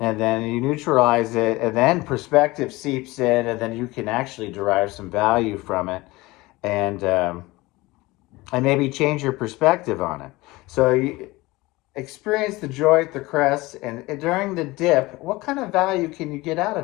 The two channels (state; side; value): quieter; right; 20.9 dB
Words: then you neutralize it, and then perspective seeps in, and then you can actually derive some value from it, and maybe change your perspective on it. So you experience the joy at the crest, and during the dip, what kind of value can you get out